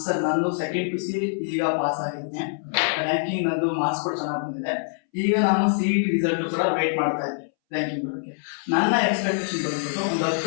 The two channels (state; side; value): silent; right; 62 dB below the other